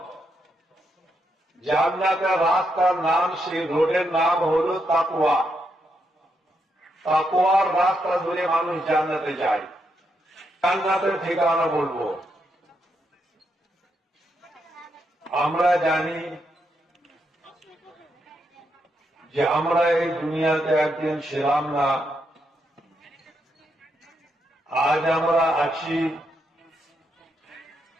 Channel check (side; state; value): both; normal; correlation 0.81